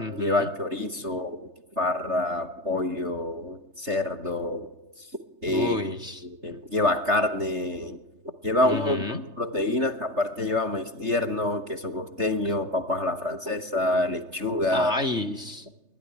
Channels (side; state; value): left; late; 3.3 ms